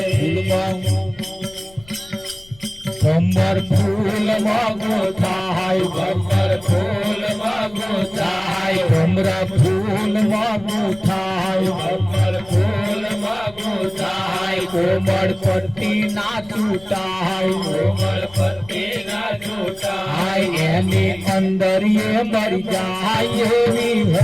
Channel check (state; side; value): noise; left; rumble, 23 dB below the sound